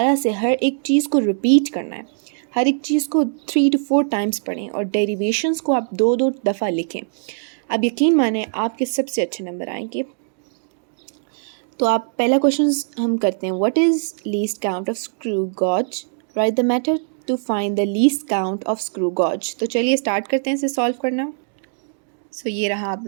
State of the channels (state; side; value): silent; left; digital silence